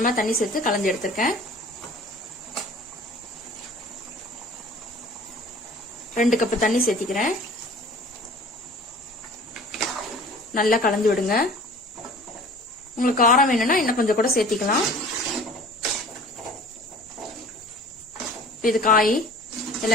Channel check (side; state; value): both; normal; correlation 0.46